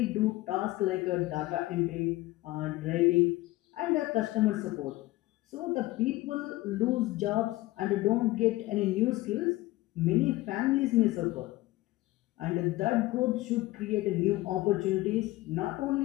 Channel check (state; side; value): quieter; right; 18.5 dB